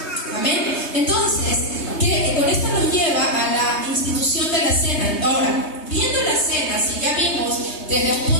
Amén. Entonces, con esto nos lleva a la institución de la cena. Ahora, viendo la cena, si ya vimos desde el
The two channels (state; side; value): late; right; 3.2 ms